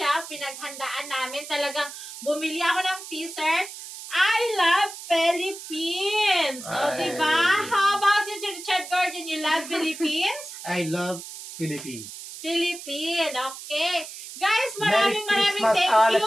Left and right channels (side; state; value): right; noise; hiss, 12 dB below the sound